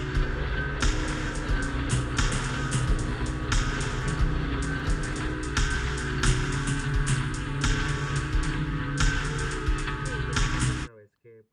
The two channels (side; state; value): both; identical; correlation 1.00